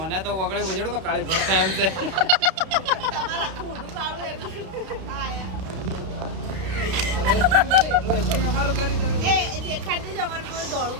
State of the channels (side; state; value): left; late; 31 ms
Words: તો વગડે બજડો તો કાળી પડતા એમ છે અમારું કરી તમે એ દેખાડતું જ અમારું કોઈ દોડું